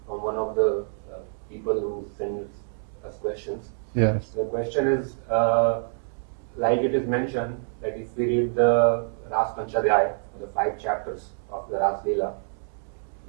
from one of the people who sends us questions. Yes. The question is, like it is mentioned, that if we read the Ras Panchadhyaya, or the 5 chapters of the Ras Leela,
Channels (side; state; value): left; silent; digital silence